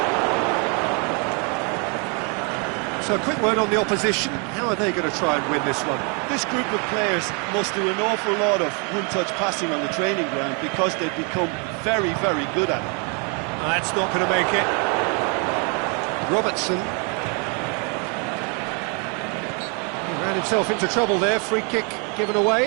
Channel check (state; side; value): quieter; left; 35.4 dB